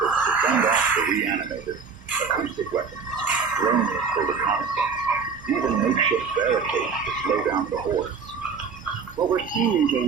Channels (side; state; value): left; quieter; 5.5 dB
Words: to fend off the reanimated: acoustic weapons, drones for reconnaissance, even makeshift barricades to slow down the hordes. What we're seeing,